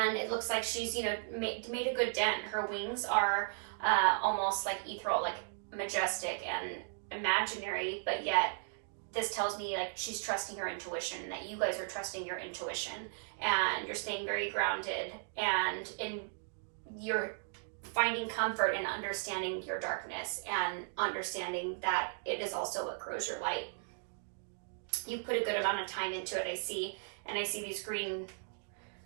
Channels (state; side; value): silent; left; digital silence